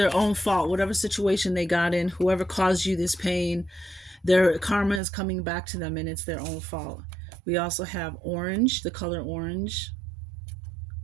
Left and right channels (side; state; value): left; drops out; at 5.0 s